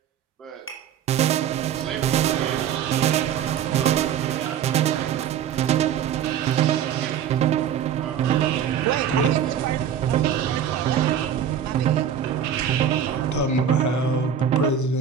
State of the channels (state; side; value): quieter; left; 8.7 dB